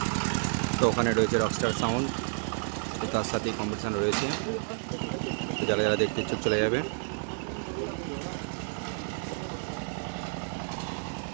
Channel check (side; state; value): left; silent; 58 dB below the other